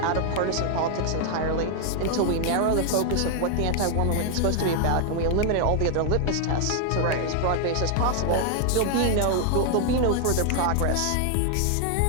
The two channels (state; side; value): different; both; correlation 0.00